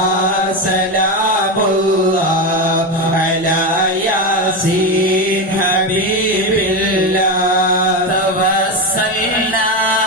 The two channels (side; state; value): both; normal; correlation 0.14